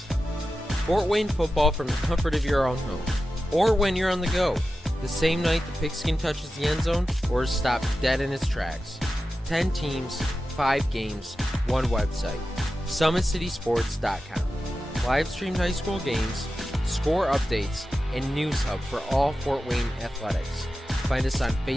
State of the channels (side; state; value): both; normal; correlation 0.92